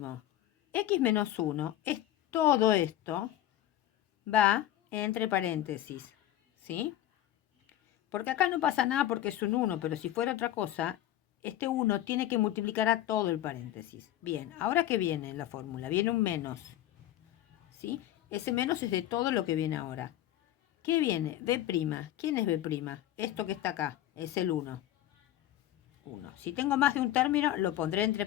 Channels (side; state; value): right; quieter; 13.3 dB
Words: X menos 1 es todo esto, va entre paréntesis, ¿sí? Porque acá no pasa nada porque es un 1, pero si fuera otra cosa, este 1 tiene que multiplicar a todo el paréntesis. Bien, ahora ¿qué viene en la fórmula? Viene un menos, ¿sí? Ese menos es de todo lo que viene ahora. ¿Qué viene? B'. ¿Quién es B'? Esto que está acá, es el 1. 1. Si tengo más de un término, lo pondré entre